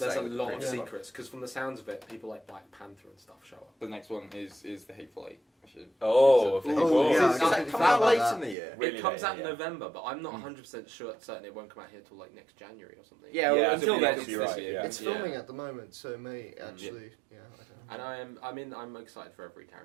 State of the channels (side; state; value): left; drops out; at 8.6 s